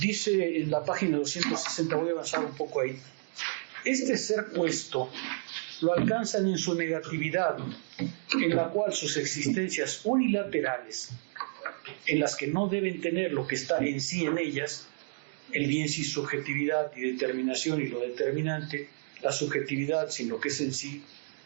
en la página 260, voy a avanzar un poco ahí, este ser puesto lo alcanzan en su negatividad, en la cual sus existencias unilaterales en las que no deben tener lo que está en sí en ellas, el bien sin subjetividad y determinación y lo determinante, la subjetividad sin lo que es en sí,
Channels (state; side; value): silent; left; digital silence